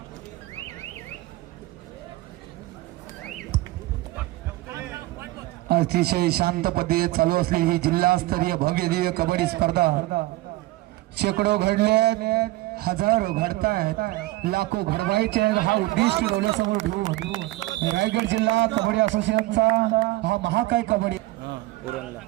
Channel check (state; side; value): quieter; left; 18.8 dB